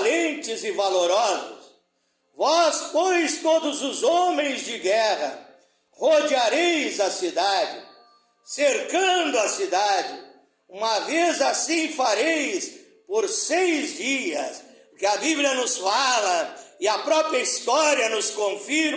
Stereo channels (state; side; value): identical; both; correlation 1.00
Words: e valorosos. Vós, pois, todos os homens de guerra, rodeareis a cidade, cercando a cidade. Uma vez assim fareis por 6 dias, porque a Bíblia nos fala, e a própria história nos